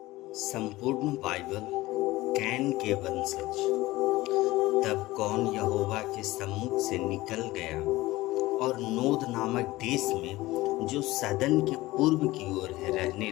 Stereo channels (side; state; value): right; quieter; 18.5 dB